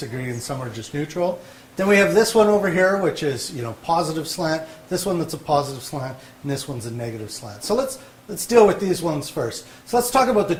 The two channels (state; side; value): identical; both; correlation 1.00